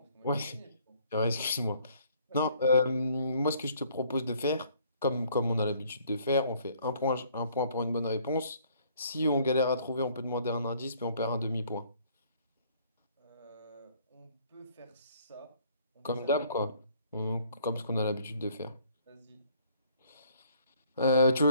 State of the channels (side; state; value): both; inverted; correlation -0.61